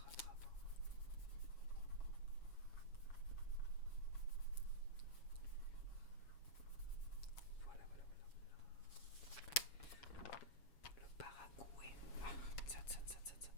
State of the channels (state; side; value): late; right; 7.1 ms